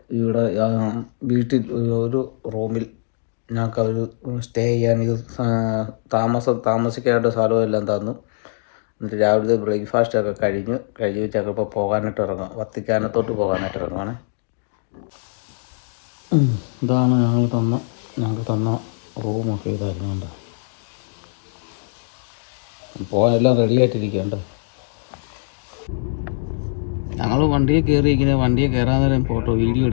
വീട്ടിൽ ഒരു റൂമിൽ ഞങ്ങൾക്ക് അവർ സ്റ്റേ ചെയ്യാൻ താമസിക്കാനായിട്ട് സ്ഥലവും എല്ലാം തന്നു. എന്നിട്ട് രാവിലെ ബ്രേക്ക്ഫാസ്റ്റൊക്കെ കഴിഞ്ഞ് വെച്ചൊക്കെ ഇപ്പോൾ പോകാനായിട്ട് ഇറങ്ങും. വത്തിക്കാനത്തോട്ട് പോകാനായിട്ട് ഇറങ്ങുവാണ്. ഇതാണ് ഞങ്ങൾക്ക് തന്ന റൂമൊക്കെ ഇതായിരുന്നുണ്ട്. പോകാനെല്ലാം റെഡി ആയിട്ടിരിക്കുന്നുണ്ട്. ഞങ്ങൾ വണ്ടിയിൽ കയറിയിരിക്കുന്നത്, വണ്ടിയിൽ കയറാൻ നേരം വീഡിയോ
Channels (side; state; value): right; silent; digital silence